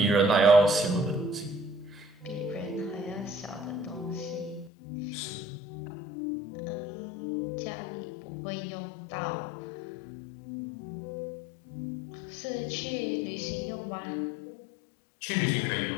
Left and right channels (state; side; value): drops out; right; at 4.7 s